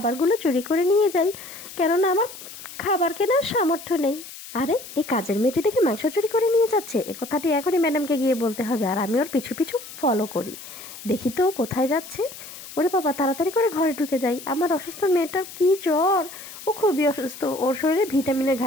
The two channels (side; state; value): left; noise; hiss, 14 dB below the sound